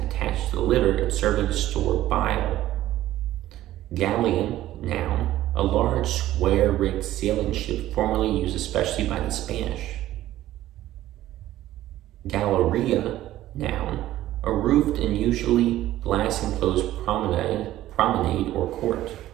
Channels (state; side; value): quieter; left; 14.2 dB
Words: attached to the liver and serving to store bile. Galleon, noun, a large square-rigged sailing ship formerly used especially by the Spanish. Galleria, noun, a roofed and usually glass-enclosed promenade or court.